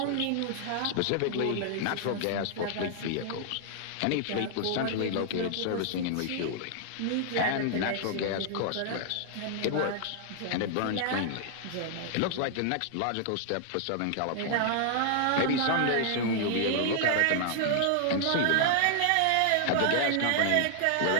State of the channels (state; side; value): different; both; correlation -0.01